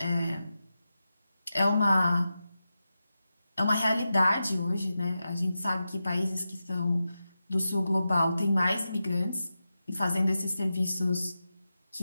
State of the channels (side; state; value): both; inverted; correlation -0.91